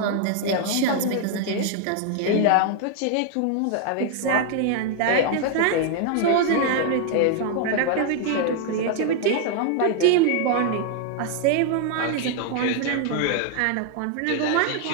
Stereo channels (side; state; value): both; different; correlation 0.00